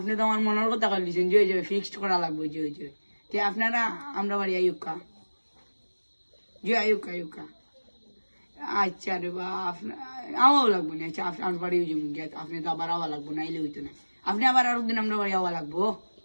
তো আমার মনের কথা বলছেন যে ওই যে ফিক্সড করা লাগবে যে ওই যে তে আপনারা আমরা বাড়ি আয়ুকা জি আয়ুকা আয়ুকা আচ্ছা রে বা আওয়াও লাগবো না আচ্ছা আপনার বাড়িও যাবো গিয়া আপনি তো আবার আওয়া লাগবো না এলে হইতো না আপনি আবার আর দিন আমরা বাড়ি আওয়া লাগবো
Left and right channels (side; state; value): both; inverted; correlation -1.00